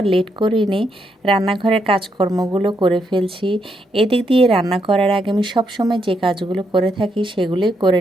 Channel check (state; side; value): normal; both; correlation 0.78